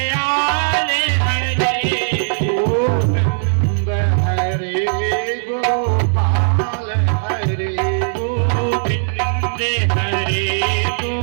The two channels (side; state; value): left; silent; digital silence